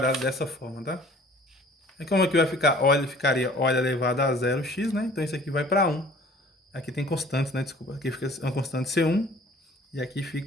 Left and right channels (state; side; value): normal; both; correlation 0.51